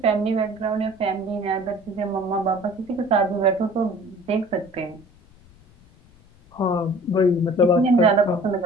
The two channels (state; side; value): noise; left; rumble, 27 dB below the sound